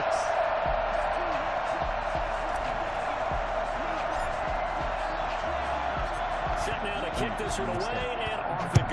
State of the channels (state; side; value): identical; both; correlation 1.00